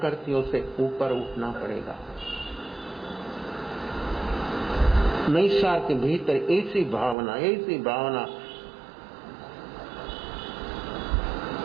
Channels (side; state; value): left; drops out; at 7.2 s